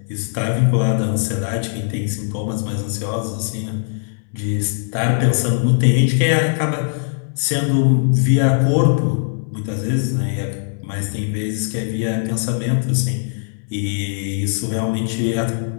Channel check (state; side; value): silent; right; 66 dB below the other